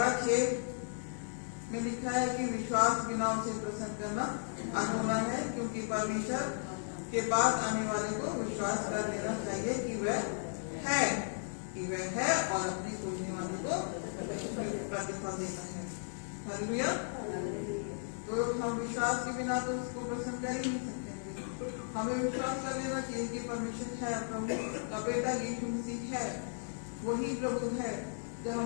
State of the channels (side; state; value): right; silent; digital silence